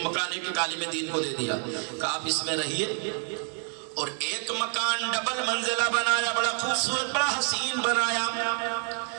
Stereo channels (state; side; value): quieter; left; 36.0 dB